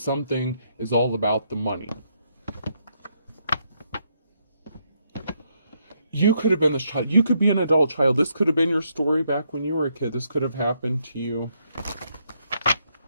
is all about the money. You could have been this child. You could be an adult child. This could have been your story back when you were a kid. This could have happened to you.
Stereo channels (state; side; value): inverted; both; correlation -0.76